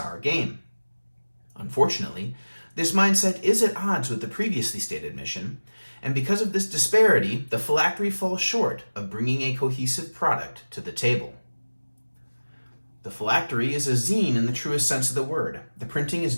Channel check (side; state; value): both; inverted; correlation -1.00